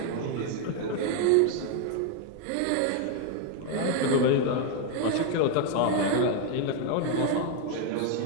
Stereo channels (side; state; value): both; different; correlation 0.01